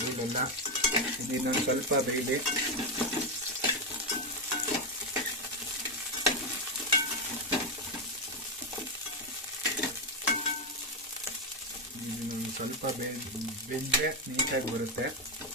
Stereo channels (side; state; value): both; normal; correlation 0.07